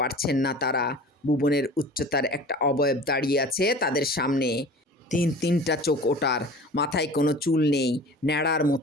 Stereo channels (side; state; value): both; normal; correlation 0.41